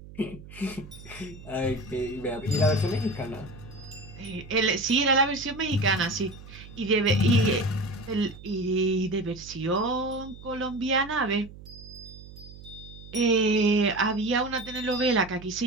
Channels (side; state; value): right; noise; hum, 17 dB below the sound